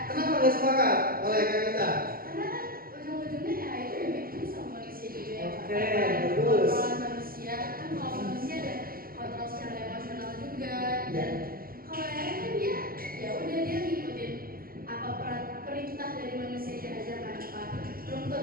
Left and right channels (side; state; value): left; late; 0.42 ms